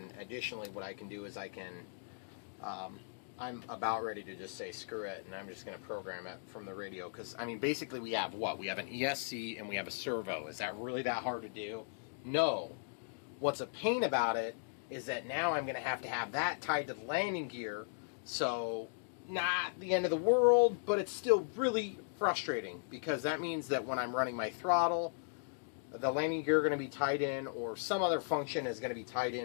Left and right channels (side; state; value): right; silent; digital silence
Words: additionally what I can do is I can, I'm about ready to just say screw it, and I'm just going to program it from the radio. Because, I mean, basically we have what? We have an ESC and we have a servo. Is that really that hard to do? No. What's a pain about it is that now I'm going to have that tied to the landing gear. So, not the end of the world, but it's still really frustrating. Because that means that when I'm running my throttle, the landing gear is going to be tied in, or some other function is going to be tied